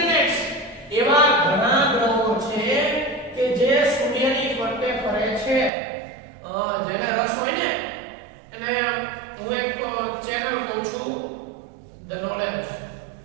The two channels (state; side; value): drops out; left; at 5.7 s